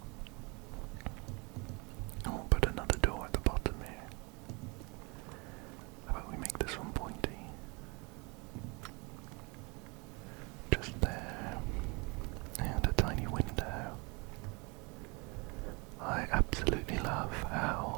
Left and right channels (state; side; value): quieter; left; 29.2 dB